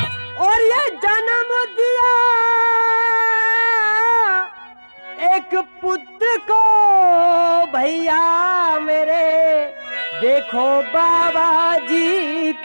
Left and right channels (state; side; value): inverted; both; correlation -1.00